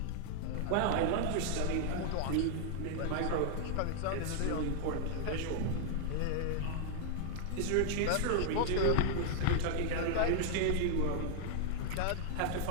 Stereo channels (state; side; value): different; both; correlation 0.00